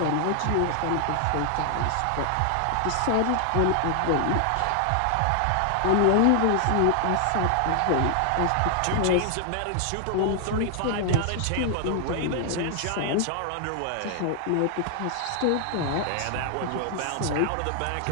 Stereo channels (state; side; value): different; both; correlation 0.00